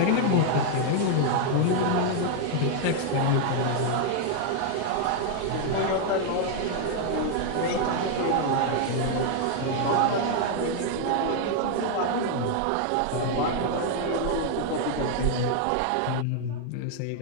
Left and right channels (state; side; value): different; both; correlation 0.00